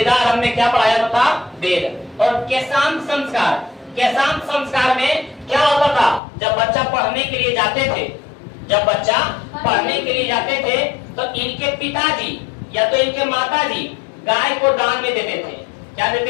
में क्या पढ़ाया जाता था? वेद। और केशांत संस्कार में क्या होता था? जब बच्चा पढ़ने के लिए जाते थे तो इनके पिताजी या तो इनके माताजी गाय को दान में देते थे। क्या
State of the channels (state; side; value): drops out; right; at 6.2 s